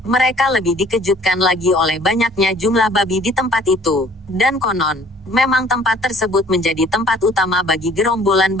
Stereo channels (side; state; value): both; normal; correlation 0.55